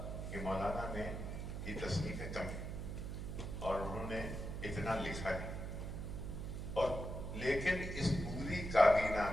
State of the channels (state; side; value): noise; right; hum, 5 dB below the sound